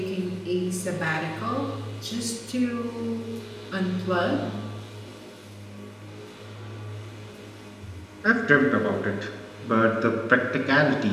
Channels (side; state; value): both; identical; correlation 1.00